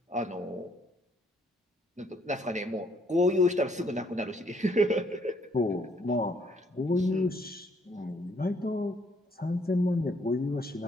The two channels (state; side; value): normal; both; correlation 0.67